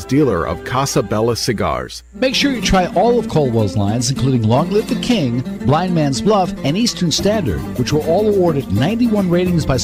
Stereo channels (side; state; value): both; identical; correlation 1.00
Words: dealer of Casa Bella cigars. Make sure you try all of Caldwell's lines, including Long Live the King, Blind Man's Bluff, and Eastern Standard, which were all awarded 91 ratings by